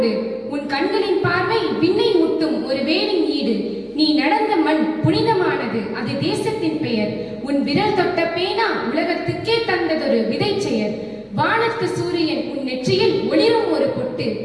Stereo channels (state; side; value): identical; both; correlation 1.00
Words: உன் கண்களின் பார்வை விண்ணை முட்டும் ஒரு வேலின் ஈடு. நீ நடந்த மண் புனிதமானது, அது தேசத்தின் பெயர். உன் விரல் தொட்ட பேனா உலகத்துக்கே தந்ததொரு விதை செயல். வானத்து சூரியன் உன் நெற்றியில் ஒளிரும் ஒரு பொட்டு.